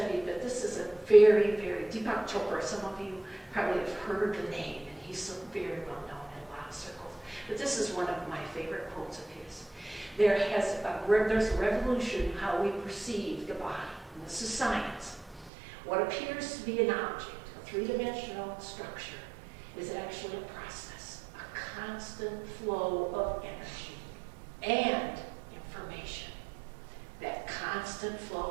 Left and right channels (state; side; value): drops out; left; at 15.5 s